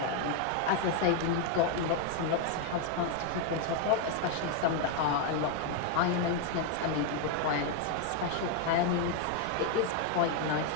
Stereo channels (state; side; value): different; both; correlation 0.01